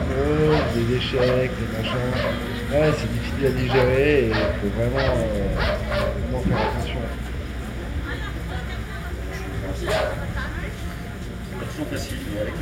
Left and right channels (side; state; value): both; identical; correlation 1.00